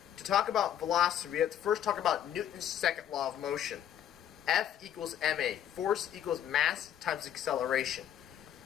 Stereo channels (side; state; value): right; quieter; 10.4 dB